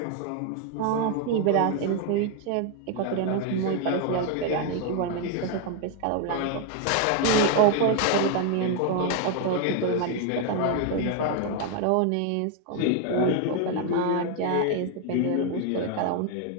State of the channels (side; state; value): both; different; correlation 0.01